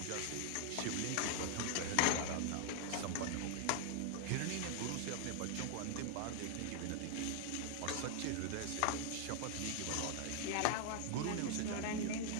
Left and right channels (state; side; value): different; both; correlation 0.00